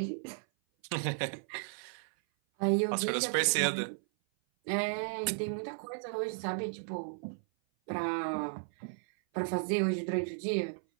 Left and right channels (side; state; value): left; silent; 55 dB below the other